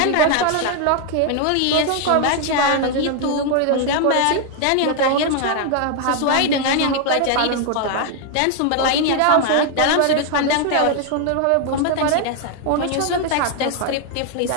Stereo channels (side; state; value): both; different; correlation 0.00